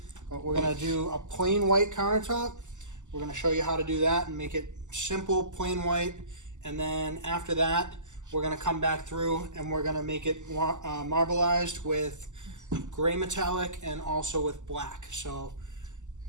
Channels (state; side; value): late; left; 0.84 ms